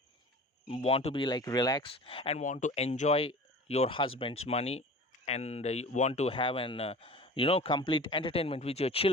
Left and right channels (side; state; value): both; normal; correlation 0.39